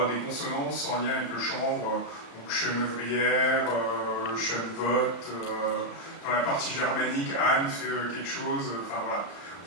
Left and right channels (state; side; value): late; right; 34 ms